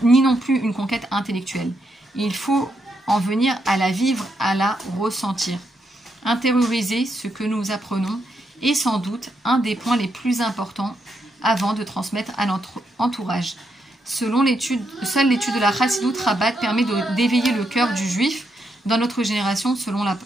ni non plus une conquête intellectuelle. Il faut en venir à la vivre, à la ressentir. Intérioriser ce que nous apprenons est sans doute un des points les plus importants avant de transmettre à notre entourage. Seule l'étude de la Chassidut Rabat permet d'éveiller le cœur du juif dans notre génération, selon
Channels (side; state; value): both; normal; correlation 0.80